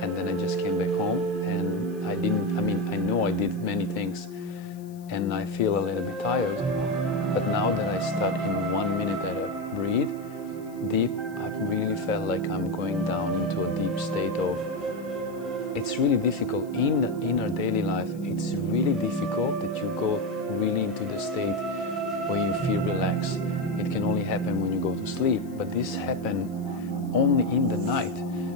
and then I just came back home, and I know I did many things, and I feel a little bit tired. But now that I start in 1 minute that I breathe deep, I really felt like I'm going down into a deep state of, it's really difficult in our daily life. It's really difficult that you go really into the state where you feel relaxed. It can only happen when you go to sleep, but this happens only in the night.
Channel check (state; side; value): noise; left; hiss, 26 dB below the sound